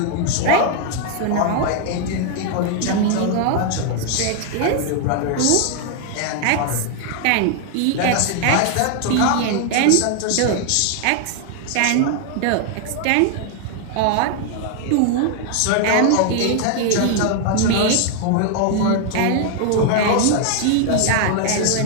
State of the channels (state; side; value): different; both; correlation 0.00